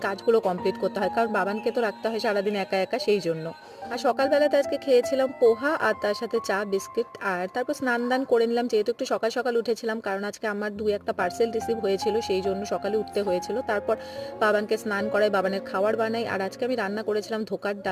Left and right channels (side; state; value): both; identical; correlation 1.00